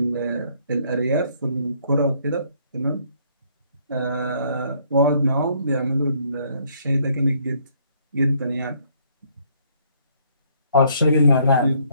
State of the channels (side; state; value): both; inverted; correlation -0.66